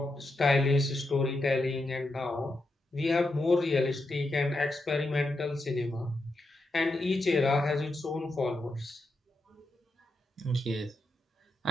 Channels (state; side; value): normal; both; correlation 0.85